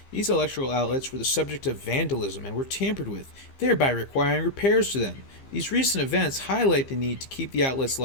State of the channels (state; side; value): late; right; 15 ms